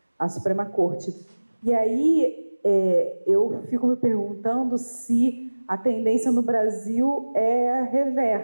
Suprema Corte. E aí eu fico me perguntando se a tendência no Brasil é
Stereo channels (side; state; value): both; inverted; correlation -1.00